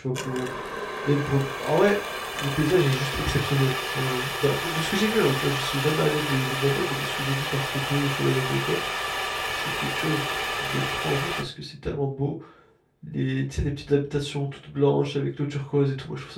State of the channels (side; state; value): both; identical; correlation 1.00